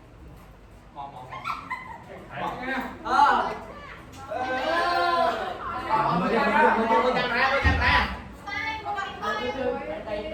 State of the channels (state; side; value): identical; both; correlation 1.00